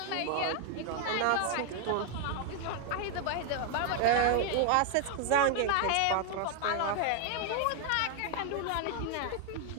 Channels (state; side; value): different; both; correlation 0.00